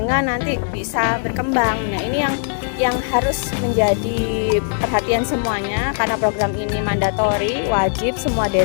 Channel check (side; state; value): right; silent; digital silence